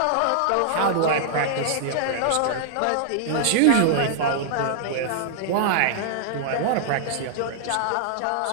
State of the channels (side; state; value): both; different; correlation -0.01